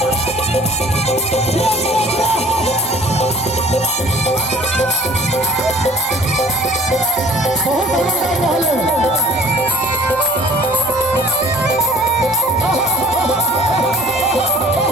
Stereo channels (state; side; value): normal; both; correlation 0.53